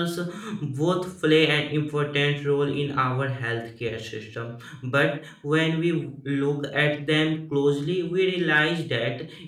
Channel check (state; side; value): identical; both; correlation 1.00